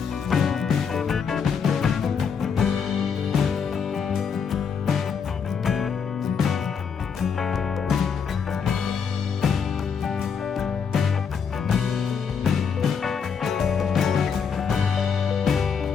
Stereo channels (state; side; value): quieter; right; 6.5 dB